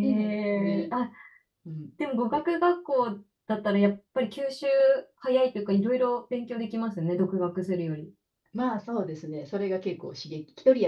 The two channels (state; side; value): identical; both; correlation 1.00